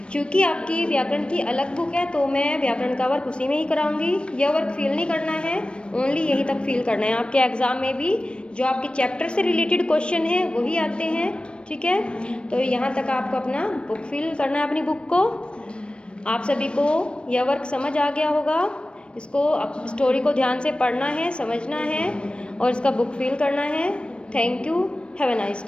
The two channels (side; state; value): right; late; 0.058 ms